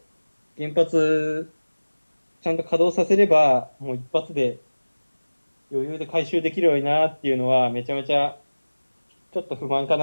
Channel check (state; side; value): inverted; both; correlation -1.00